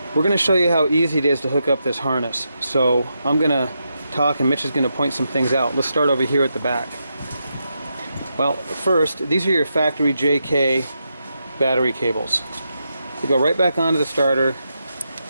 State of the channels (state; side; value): inverted; both; correlation -0.84